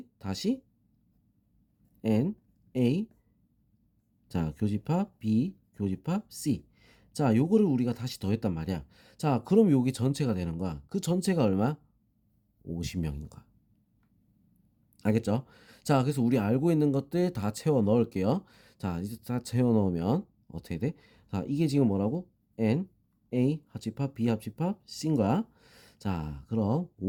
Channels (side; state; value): both; identical; correlation 1.00